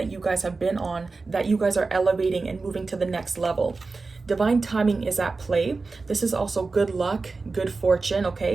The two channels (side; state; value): left; quieter; 4.0 dB